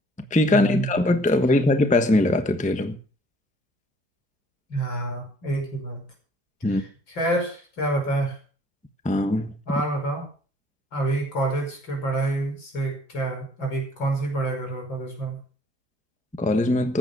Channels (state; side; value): normal; both; correlation 0.59